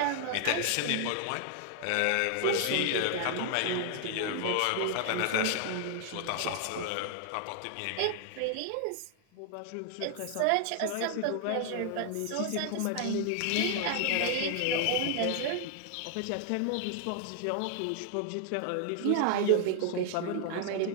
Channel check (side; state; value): both; different; correlation 0.00